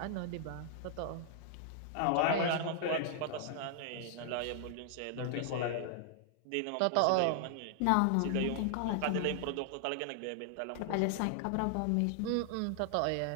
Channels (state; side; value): different; both; correlation 0.00